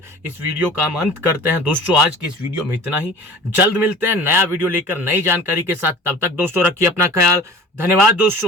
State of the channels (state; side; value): normal; both; correlation 0.41